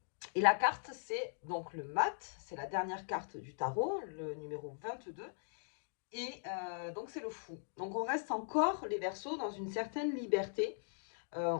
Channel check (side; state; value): right; silent; digital silence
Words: et la carte c'est donc le mat, c'est la dernière carte du tarot, le numéro 22. Et donc c'est le fou. Donc on reste encore les versos dans une certaine liberté.